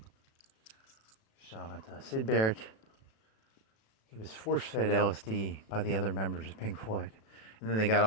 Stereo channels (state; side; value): late; right; 36 ms